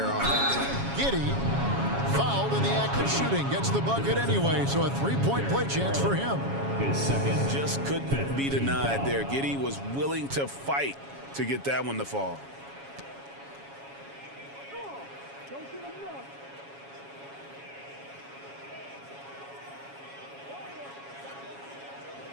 offense. Giddy, fouled in the act of shooting, gets the bucket anyway, so a 3-point play chance for him. His second. Just couldn't be denied there. Giddy was willing to fight to get that one to fall.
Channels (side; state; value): left; late; 7.2 ms